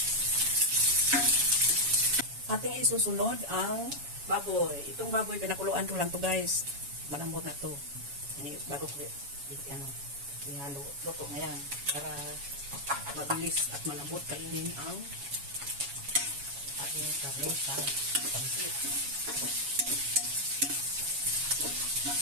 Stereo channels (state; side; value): late; left; 7.2 ms